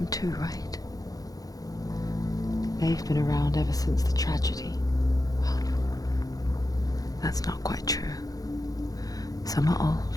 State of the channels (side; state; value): right; late; 0.18 ms